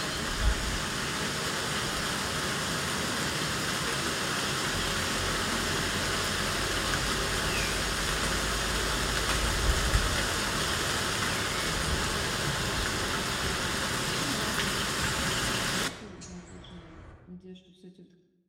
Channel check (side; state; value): both; identical; correlation 1.00